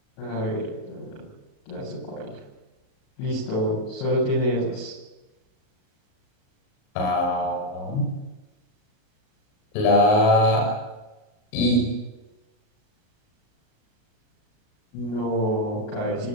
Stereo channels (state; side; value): late; right; 38 ms